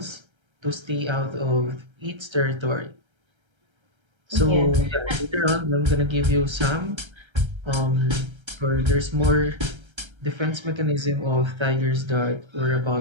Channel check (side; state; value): left; late; 1.3 ms